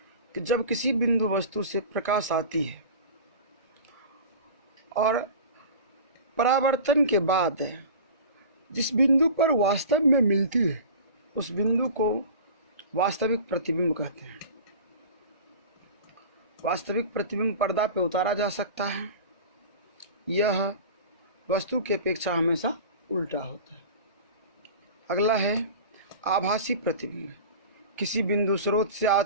कि जब किसी बिंदु वस्तु से प्रकाश आती है और परावर्तन के बाद जिस बिंदु पर वास्तव में मिलती है उस बिंदु को वास्तविक प्रतिबिंब कहते हैं। वास्तविक प्रतिबिंब पर्दा पे उतारा जा सकता है। यह वस्तु की अपेक्षा हमेशा उल्टा होता है। अगला है आभासी प्रतिबिंब। किसी बिंदु स्रोत से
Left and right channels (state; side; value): inverted; both; correlation -0.36